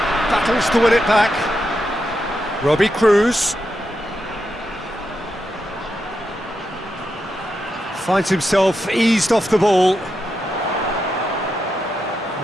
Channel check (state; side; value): normal; both; correlation 0.85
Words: Battles to win it back. Robbie Cruz. Finds himself eased off the ball.